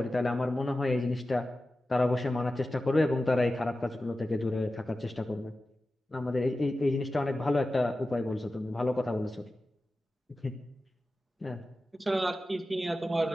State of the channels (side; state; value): both; normal; correlation 0.94